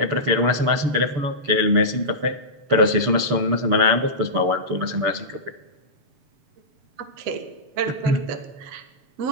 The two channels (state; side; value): late; left; 6.9 ms